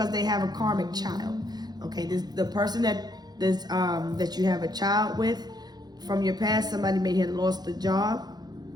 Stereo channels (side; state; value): left; late; 0.19 ms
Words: they have a karmic child. Okay, the person that you have a child with from your past, somebody may have lost the job.